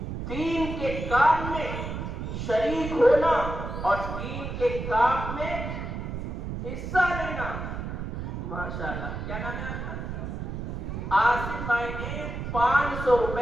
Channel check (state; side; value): noise; right; rumble, 5 dB below the sound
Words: دین کے کام میں شریک ہونا اور دین کے کام میں حصہ لینا. ماشاءاللہ. کیا نام ہے آپ کا؟ آصف بھائی نے 500